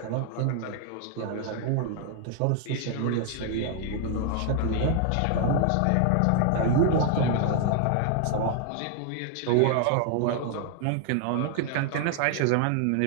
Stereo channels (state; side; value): different; both; correlation 0.00